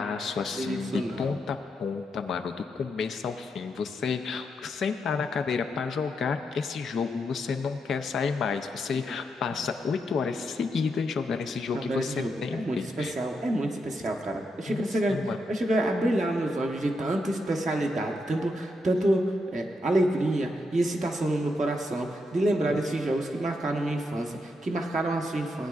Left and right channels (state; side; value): normal; both; correlation 0.82